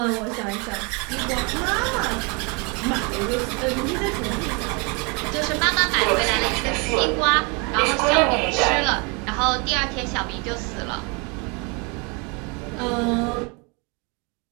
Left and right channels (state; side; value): quieter; left; 31.6 dB